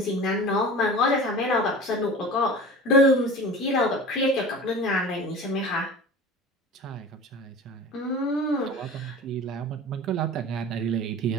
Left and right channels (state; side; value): normal; both; correlation 0.36